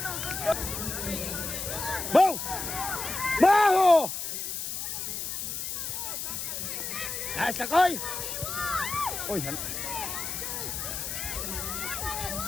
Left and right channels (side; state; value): left; noise; hiss, 4 dB below the sound